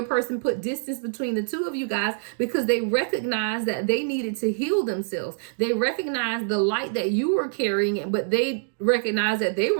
person put distance between the two of you guys, because they recognized that they needed to heal themselves. They recognized the light that you were carrying, but they recognized that they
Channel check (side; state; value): left; silent; digital silence